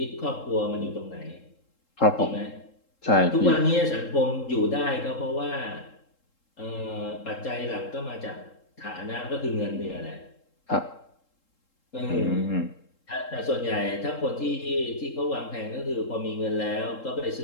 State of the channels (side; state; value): right; late; 3.7 ms